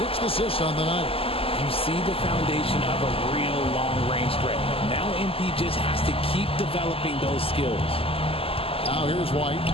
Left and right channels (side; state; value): right; late; 0.27 ms